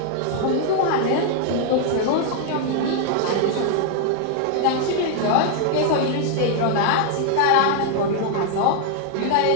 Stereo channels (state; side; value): different; both; correlation 0.00